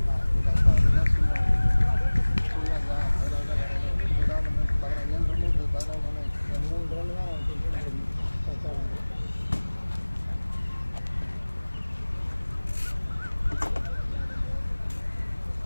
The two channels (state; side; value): inverted; both; correlation -1.00